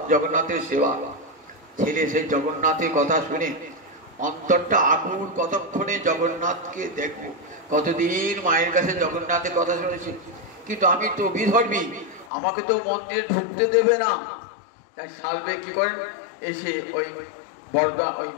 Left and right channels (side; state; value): right; drops out; at 12.3 s